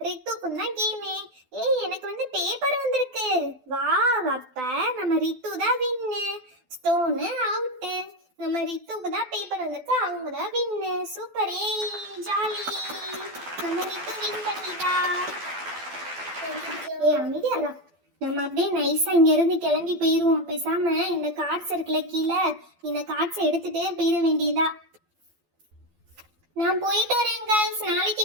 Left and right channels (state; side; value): late; left; 12 ms